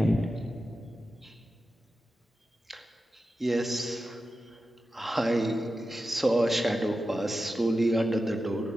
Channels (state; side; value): normal; both; correlation 0.92